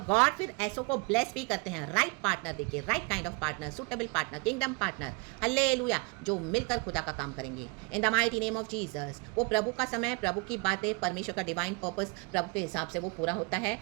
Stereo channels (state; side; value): quieter; left; 28.9 dB